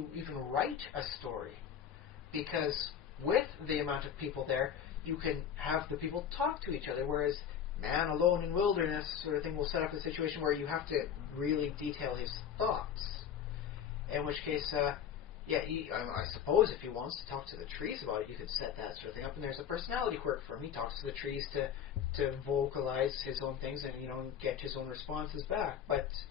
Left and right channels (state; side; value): quieter; right; 8.5 dB